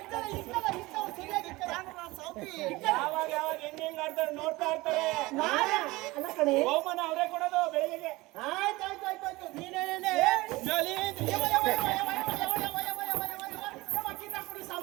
ಯಾವಾಗ ಯಾವಾಗ ಹೆಂಗ್ ಆಡ್ತಾರೆ ನೋಡ್ತಾ ಇರ್ತಾರೆ. ಹೋಮನ ಅವರೇ ಕೊಡೋದು ಬೆಳಿಗ್ಗೆ. ಆಯ್ತಾಯ್ತಾಯ್ತಾಯ್ತು ನೀನೇನೇ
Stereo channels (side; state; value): left; quieter; 21.0 dB